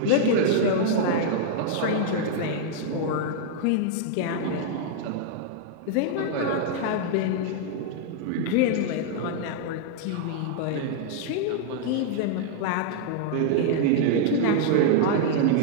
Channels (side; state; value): both; different; correlation 0.00